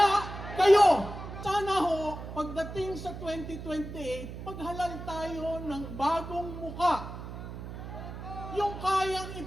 kayo! Sana ho, pagdating sa 2028, paghalal tayo ng bagong muka. Yung kayang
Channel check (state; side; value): noise; right; hum, 10 dB below the sound